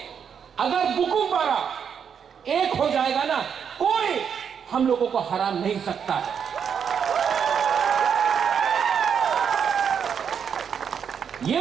अगर बुकुम्बारा एक हो जाएगा ना, कोई हम लोगों को हरा नहीं सकता है।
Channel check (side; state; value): left; quieter; 7.4 dB